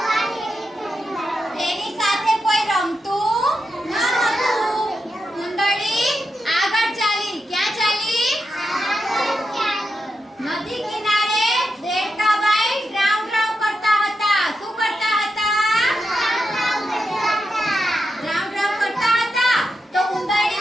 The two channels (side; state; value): both; normal; correlation 0.87